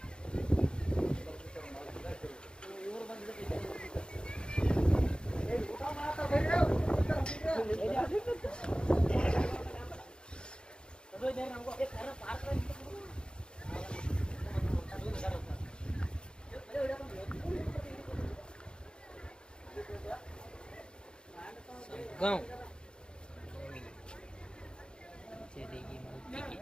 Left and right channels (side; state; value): right; late; 0.050 ms